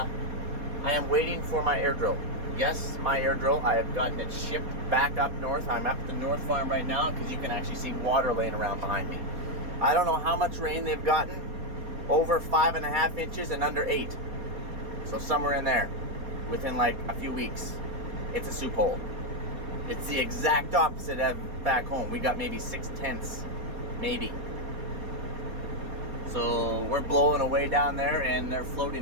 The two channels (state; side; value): late; left; 4.2 ms